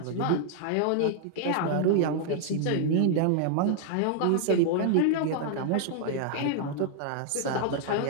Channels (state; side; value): different; both; correlation 0.00